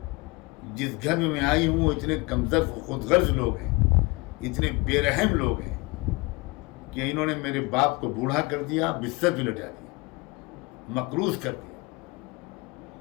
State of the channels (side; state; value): right; quieter; 25.0 dB